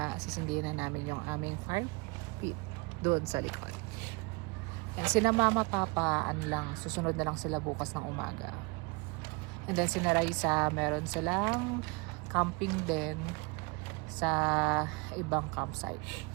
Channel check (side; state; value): left; quieter; 28.3 dB